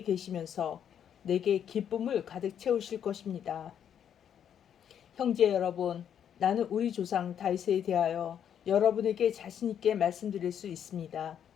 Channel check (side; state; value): right; quieter; 9.0 dB